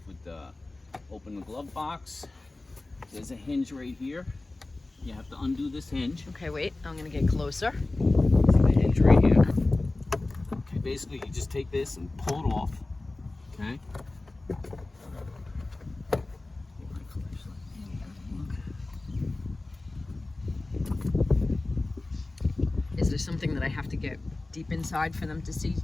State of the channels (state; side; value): quieter; right; 3.0 dB